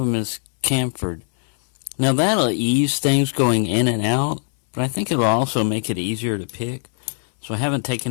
is chamfered. Now that'll ease things going in and out, but I think it'll also make it easier to pick. So I haven't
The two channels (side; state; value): right; silent; 64 dB below the other